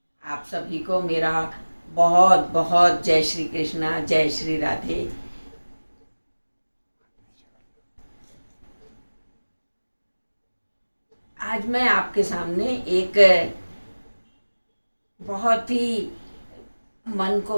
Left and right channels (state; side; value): inverted; both; correlation -1.00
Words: आप सभी को मेरा बहुत बहुत जय श्री कृष्णा, जय श्री राधे। आज मैं आपके सामने एक बहुत ही मन को